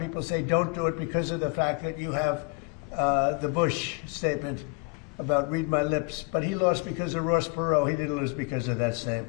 say don't do it because of the fact that you have the Bush statement about read my lips, but he lost because of Ross Perot. He didn't lose because of that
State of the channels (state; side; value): quieter; right; 30.3 dB